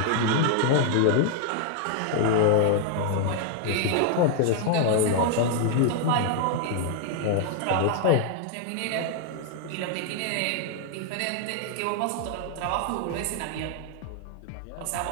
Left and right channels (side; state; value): both; different; correlation 0.00